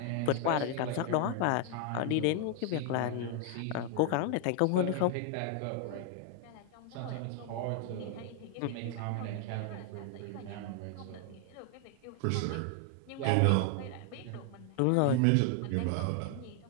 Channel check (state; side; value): different; both; correlation 0.00